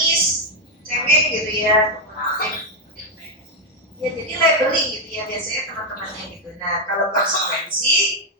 cengeng gitu ya. Ya jadi labeling gitu ya biasanya teman-temannya gitu. Nah kalau konsekuensi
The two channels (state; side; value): normal; both; correlation 0.03